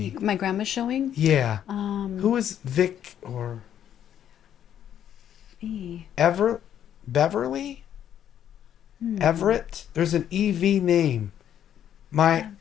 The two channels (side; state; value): right; quieter; 10.0 dB